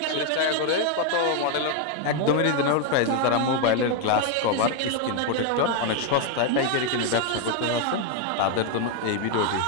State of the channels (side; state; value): both; different; correlation 0.01